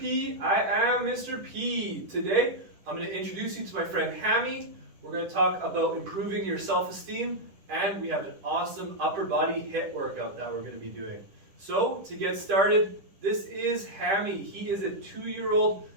I am Mr. P. Today, I'm going to introduce you to my friend Hammy. We're going to talk about improving your self-esteem, and we have an awesome upper body HIIT workout that we're going to be doing. So, to get started, this is Hammy. He is a 2-year-old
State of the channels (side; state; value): left; late; 10 ms